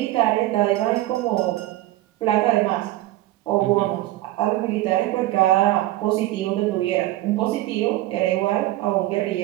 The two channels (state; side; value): quieter; left; 16.2 dB